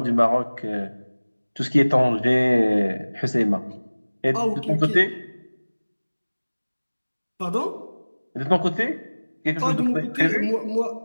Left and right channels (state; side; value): inverted; both; correlation -1.00